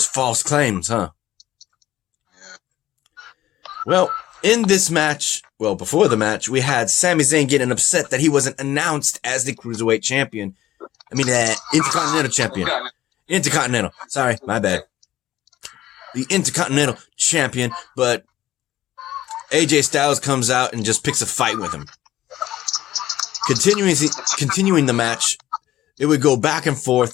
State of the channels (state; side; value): quieter; right; 14.0 dB